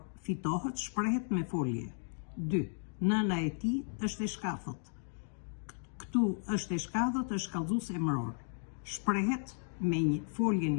fitohet shprehet me folje. 2. Nëna e tij është e shkafët. Këtu është e shkafët, është kallëzues emëror. Shprehet me një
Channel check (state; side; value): silent; right; 55 dB below the other